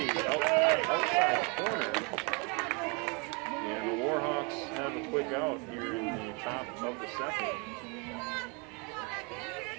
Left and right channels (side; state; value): left; quieter; 31.8 dB